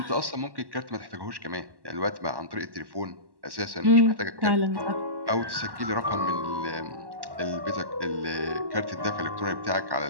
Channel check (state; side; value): late; left; 1.1 ms